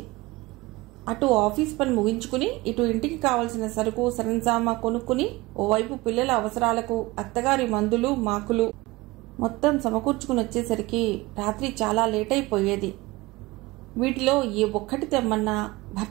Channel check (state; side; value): quieter; left; 21.2 dB